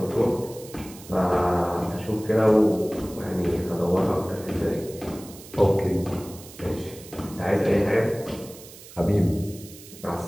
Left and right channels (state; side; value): noise; right; hiss, 18 dB below the sound